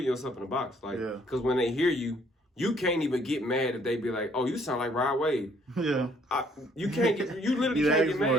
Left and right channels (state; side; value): normal; both; correlation 0.63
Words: yourself in a box. Like, because when they hear you, you can't even get mad if they be like, oh, you sound like Rod Wave. Yeah. You can't get, you literally can't get